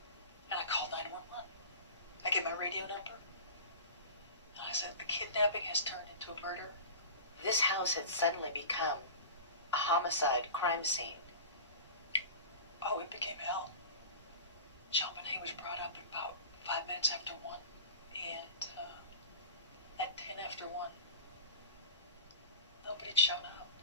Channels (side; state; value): both; inverted; correlation -0.33